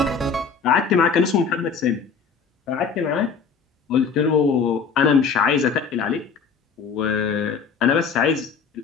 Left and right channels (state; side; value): quieter; right; 5.7 dB